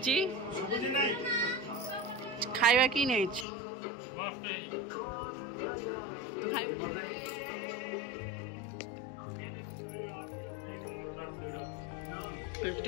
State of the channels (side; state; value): right; drops out; at 3.5 s